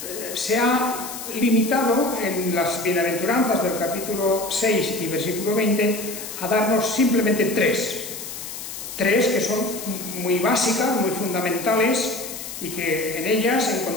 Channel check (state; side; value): noise; left; hiss, 9 dB below the sound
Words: se ha limitado en las bienaventuranzas del capítulo 6 y versículo 20 a darnos simplemente tres que son muy básicas, muy fundamentales, y que en ellas